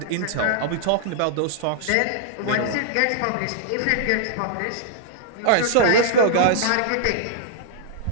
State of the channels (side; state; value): both; different; correlation -0.01